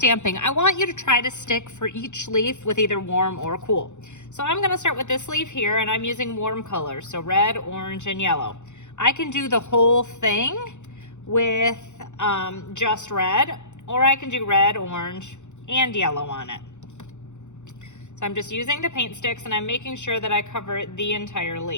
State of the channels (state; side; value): late; right; 0.84 ms